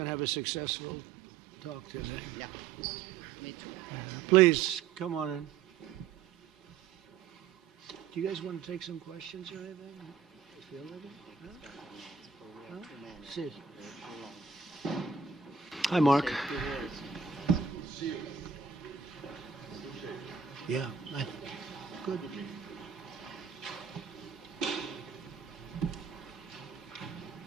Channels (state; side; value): quieter; left; 6.3 dB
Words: to have a successful talk today. Yeah, me too. Please, come on in. Do you guys want to take some questions or anything? Feel ready? Huh? See. Hi, Mark. Yeah, good.